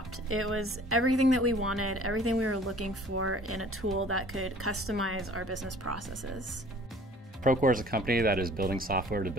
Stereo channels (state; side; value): normal; both; correlation 0.51